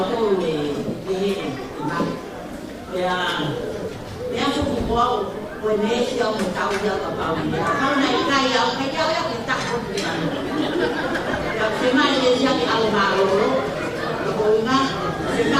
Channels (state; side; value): identical; both; correlation 1.00